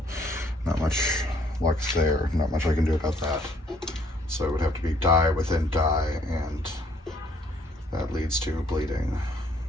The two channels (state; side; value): normal; both; correlation 0.64